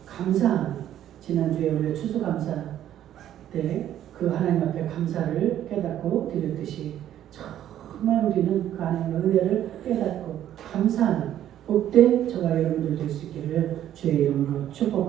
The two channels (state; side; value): quieter; left; 11.5 dB